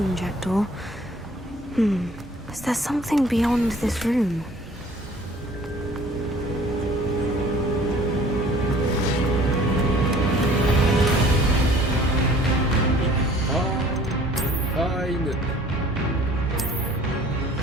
Jackdaw. Is there something beyond this room?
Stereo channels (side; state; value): both; normal; correlation 0.52